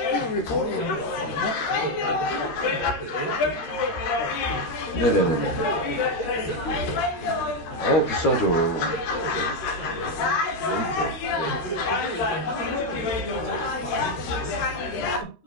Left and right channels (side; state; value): right; late; 13 ms